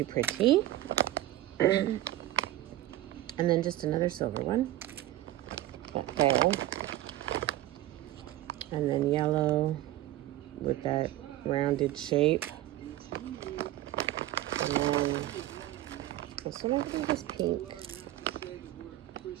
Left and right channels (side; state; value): left; quieter; 14.9 dB